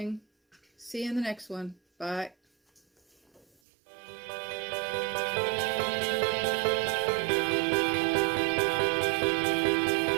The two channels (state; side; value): drops out; left; at 3.5 s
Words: See you in the next one. Bye.